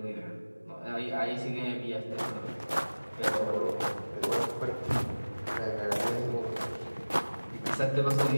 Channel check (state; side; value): inverted; both; correlation -1.00